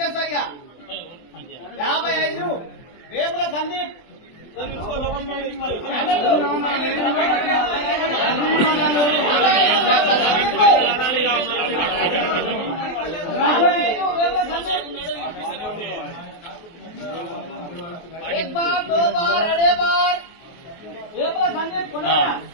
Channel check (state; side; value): late; right; 23 ms